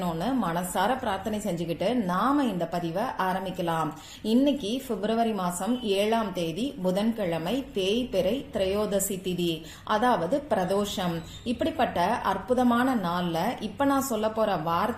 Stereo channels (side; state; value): both; identical; correlation 1.00